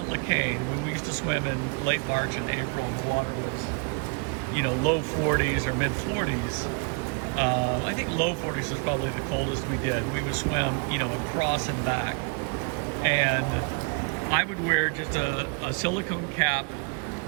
Lecain, when we used to swim in late March and April and the water was, low 40s or mid 40s, I think low 40s was probably the coldest we did. We would swim, across and back. And I would wear just a silicone cap,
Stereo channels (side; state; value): left; quieter; 35.2 dB